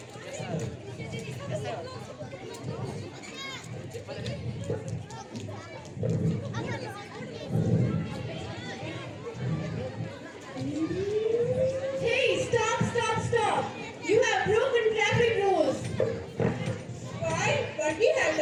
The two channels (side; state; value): both; identical; correlation 1.00